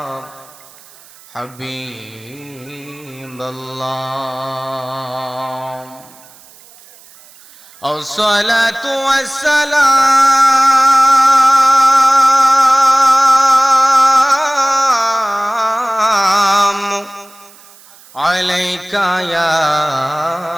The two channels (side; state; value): right; noise; hiss, 25 dB below the sound